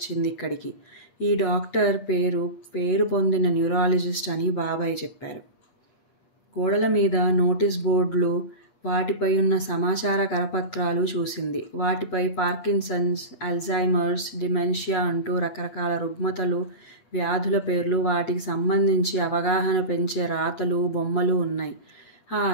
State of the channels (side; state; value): right; late; 8.3 ms